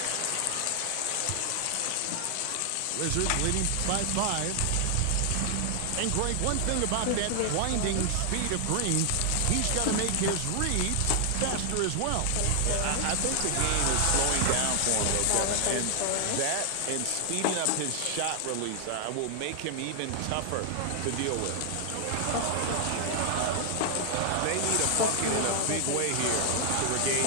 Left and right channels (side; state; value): both; different; correlation 0.00